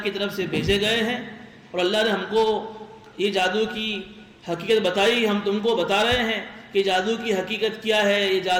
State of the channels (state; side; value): identical; both; correlation 1.00